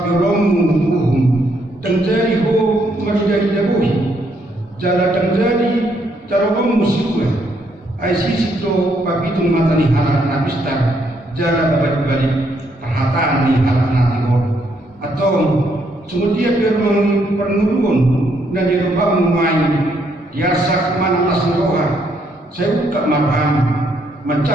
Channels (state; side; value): normal; both; correlation 0.73